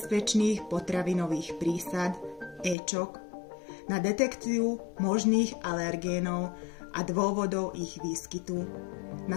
potravinových prísad, éčok, na detekciu možných alergénov a dôvodov ich výskytu, na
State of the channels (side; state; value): right; drops out; at 2.8 s